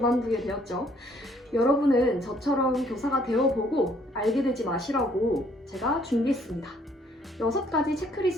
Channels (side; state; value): both; normal; correlation 0.64